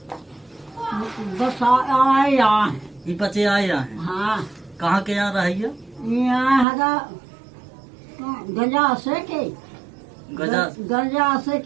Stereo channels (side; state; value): left; drops out; at 6.7 s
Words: बसा आए यहाँ। ये पचे आए यहाँ हैं। हाँ। कहाँ के यहाँ रहिए? यहाँ हरा गजा से के गजा से